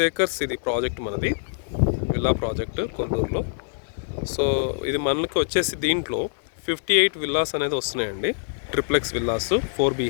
acres ఇది ప్రాజెక్ట్ మనది, విల్లా ప్రాజెక్ట్ కొల్లూరులో. సో ఇది మనకి వచ్చేసి దీంట్లో 58 విల్లాస్ అనేది వస్తున్నాయండి, ట్రిప్లెక్స్ విల్లాస్ 4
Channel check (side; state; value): right; silent; digital silence